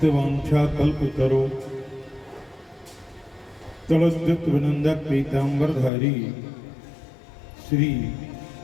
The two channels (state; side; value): drops out; right; at 5.9 s